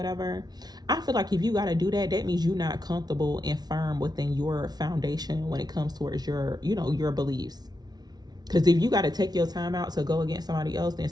I feel like if you got to do that, that means you're not comfortable and firm within your foundation when it comes towards your, you know, your beliefs. Because if you got to take your time out to go against somebody else, then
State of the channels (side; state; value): left; late; 0.19 ms